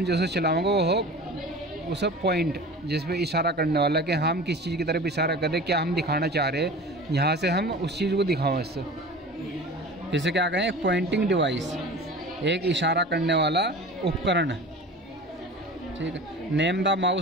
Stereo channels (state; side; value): normal; both; correlation 0.37